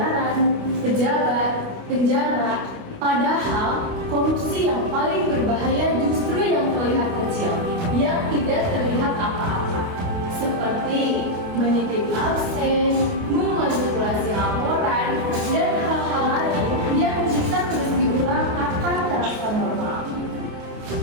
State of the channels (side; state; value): left; late; 28 ms